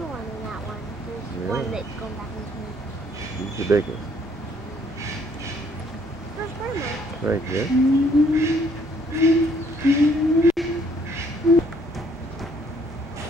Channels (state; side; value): normal; both; correlation 0.64